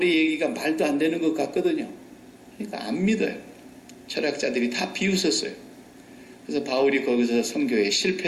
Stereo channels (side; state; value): both; identical; correlation 1.00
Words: 얘기가 말도 안 되는 것 같거든요. 그러니까 안 믿어요. 철학자들이 다 비웃었어요. 그래서 바울이 거기서 선교에